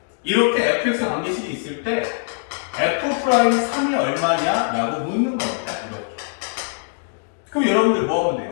이렇게 fx 관계식이 있을 때 f'3이 얼마냐? 라고 묻는 겁니다. 이렇게. 그럼 여러분들 뭐 하면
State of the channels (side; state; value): right; silent; 64 dB below the other